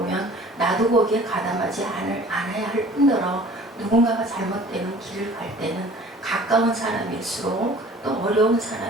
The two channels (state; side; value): normal; both; correlation 0.48